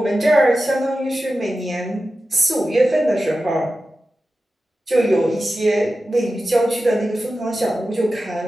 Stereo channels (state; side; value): normal; both; correlation 0.93